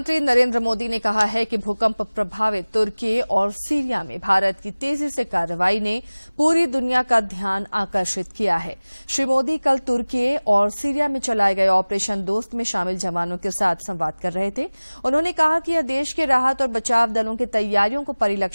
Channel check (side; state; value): both; inverted; correlation -1.00